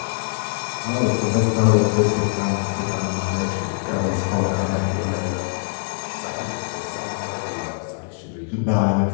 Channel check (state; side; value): silent; right; digital silence